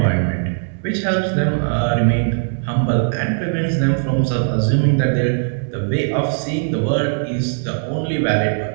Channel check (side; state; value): left; silent; 62 dB below the other